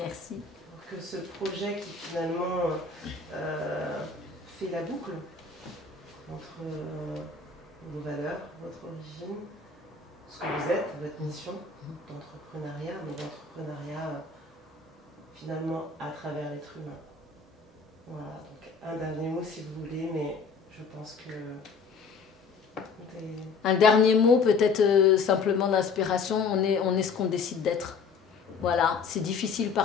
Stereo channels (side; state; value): right; quieter; 5.0 dB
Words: Pour que ce projet qui finalement fait la boucle entre vos valeurs, votre origine, ce que vous êtes, votre mission d'entrepreneuriat, mais d'entrepreneuriat finalement à travers l'être humain. Voilà, donc un dernier mot si vous voulez, mais je pense que... Un dernier mot, peut-être simplement d'inspiration, on est ce qu'on décide d'être. Voilà, c'est difficile